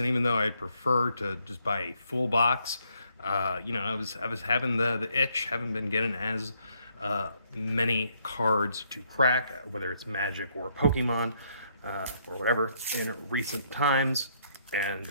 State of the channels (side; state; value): both; inverted; correlation -0.71